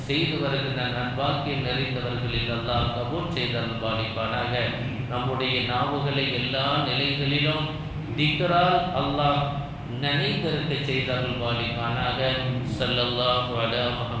செய்து வருகின்ற நன்பாக்கியம் நிறைந்தவர்களில் அல்லாஹ் கபூல் செய்து அருள் பாலிப்பானாக. நம்முடைய நாவுகளை எல்லா நிலைகளிலும் திக்ரால் அல்லாஹ் நினைத்திருக்க செய்து அருள் பாலிப்பானாக. ஸல்லல்லாஹு அலா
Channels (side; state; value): both; identical; correlation 1.00